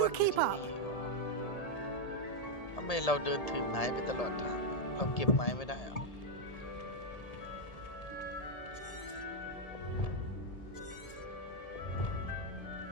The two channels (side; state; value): right; late; 1.8 ms